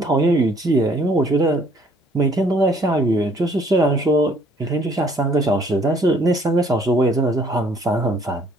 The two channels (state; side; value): normal; both; correlation 0.61